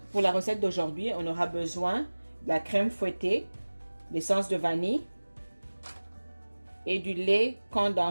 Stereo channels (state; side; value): inverted; both; correlation -1.00